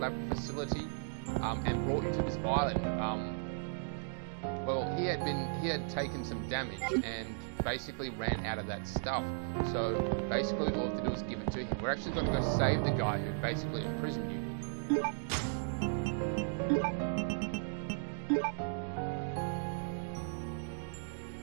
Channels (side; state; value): left; silent; digital silence